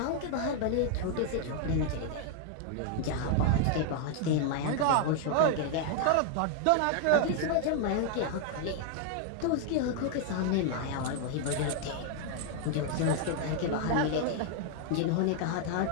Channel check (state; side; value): different; both; correlation 0.00